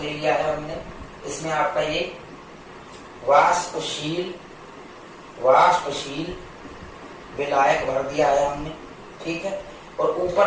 लिया है हमने, इसमें आपका ये वाष्पशील विलायक भर दिया है हमने, ठीक है। और ऊपर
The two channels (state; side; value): identical; both; correlation 1.00